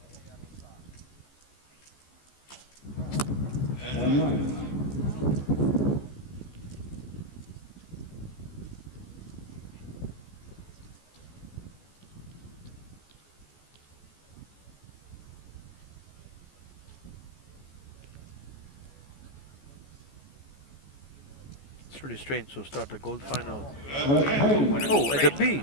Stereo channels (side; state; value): right; late; 14 ms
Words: It's really strange to start the gold final. Oh, at the B.